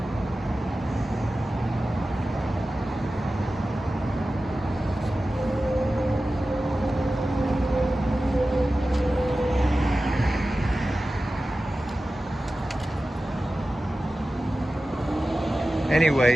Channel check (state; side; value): normal; both; correlation 0.95